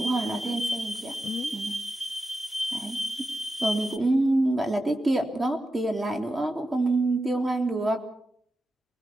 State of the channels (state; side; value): normal; both; correlation 0.90